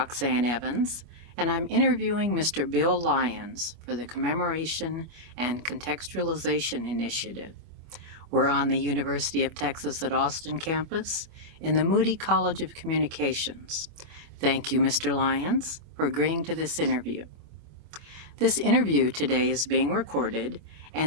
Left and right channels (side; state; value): left; late; 25 ms